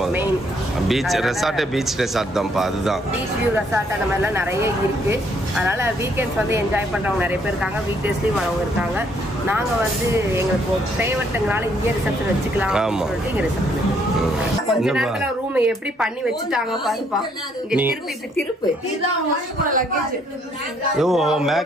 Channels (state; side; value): normal; both; correlation 0.68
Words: மெயின் பீச் ரெசார்ட்டே பீச் ரெசார்ட் தான்ப்பா. அதுதான் பீச் வியூ ரெசார்ட் அந்த மாதிரிலாம் நிறைய இருக்குது. அதனால் வீக்கெண்ட்ஸ் வந்து என்ஜாய் பண்ணுறவங்க நிறைய பேர் இருக்காங்க, வீக் டேஸ்லேயும் வரவங்க இருக்காங்க. நாங்கள் வந்து எங்களுக்கு ஃபேவரட்டுங்கனால இங்கே ரிசப்ஷன் வச்சுக்கலாம் சொல்லிட்டு இங்கே ரிசப்ஷன் கொஞ்ச நேரத்தில் ரூம் எப்படி பண்ணி வச்சுட்டாங்க பாருப்பா. இங்கே திருப்பு இப்படி திருப்பு